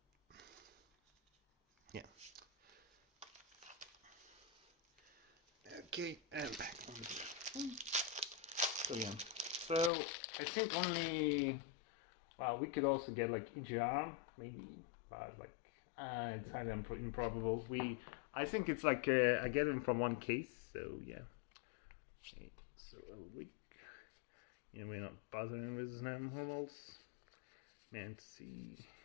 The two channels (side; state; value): right; drops out; at 9.9 s